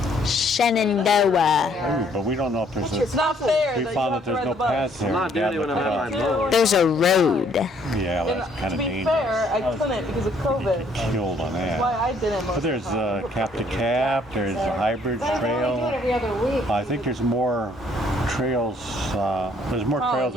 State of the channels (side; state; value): both; normal; correlation 0.64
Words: Shenandoah. Ooh, but we don't know if there's It's not fair. we that you found have that to there's ride no the bus. paths there. I'm not doing it when I'm out my mower. There's a road. Yeah, well, And that's kind to of be dangerous. fair, I couldn't because of COVID. Killed on Why that. I didn't. But there's cap to cap, there's a hybrid Do it trail. every other week. I think there's more trails, there's more trails